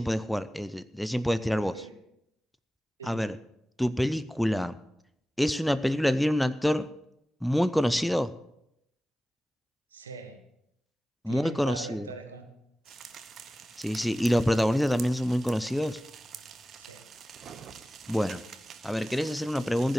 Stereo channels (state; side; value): normal; both; correlation 0.96